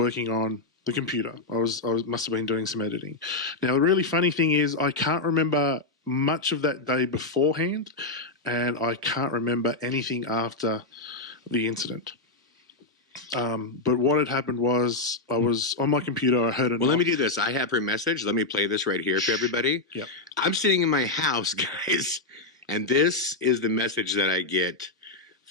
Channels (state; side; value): quieter; right; 3.1 dB